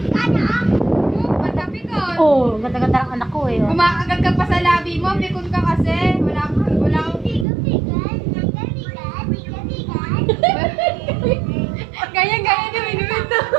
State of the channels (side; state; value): left; drops out; at 7.5 s